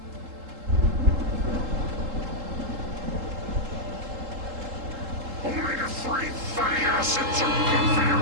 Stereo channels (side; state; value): left; late; 3.7 ms